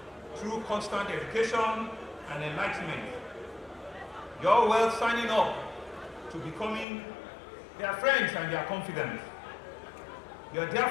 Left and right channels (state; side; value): drops out; right; at 6.9 s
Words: through constant education and enlightenment. You're well signing up to becoming their friends and their confidants. You